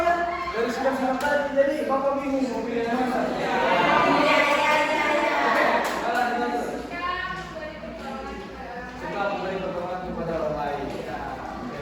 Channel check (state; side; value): identical; both; correlation 1.00